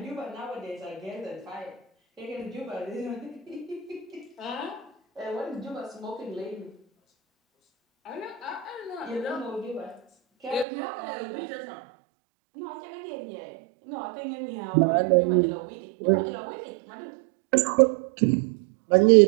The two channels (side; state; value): left; drops out; at 10.7 s